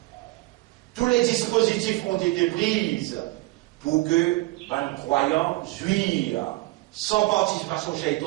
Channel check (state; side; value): quieter; left; 21.3 dB